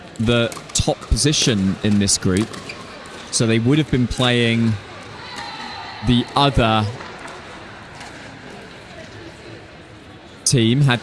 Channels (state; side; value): identical; both; correlation 1.00